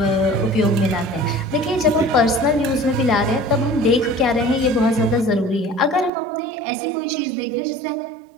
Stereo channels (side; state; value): left; drops out; at 6.1 s